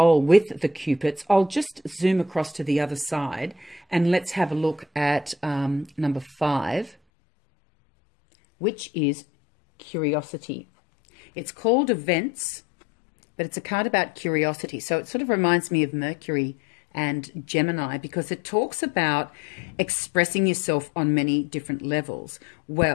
with the Cupids, I'll just zoom across to the other side and let's have a look at number 5, which is curiosity. It's called events, but it's a card about curiosity. So it sort of reminds me of Mercury and Gemini because it talks about expressing yourself on many different levels.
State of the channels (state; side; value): drops out; right; at 7.0 s